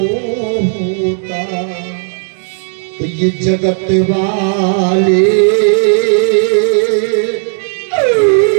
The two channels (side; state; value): left; silent; 69 dB below the other